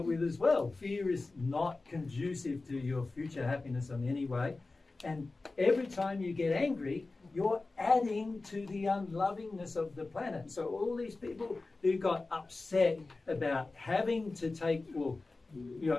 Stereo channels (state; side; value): quieter; right; 3.5 dB